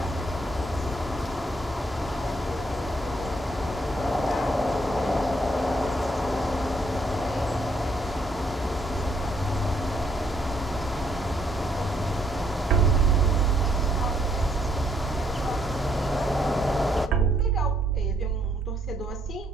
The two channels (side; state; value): both; normal; correlation 0.70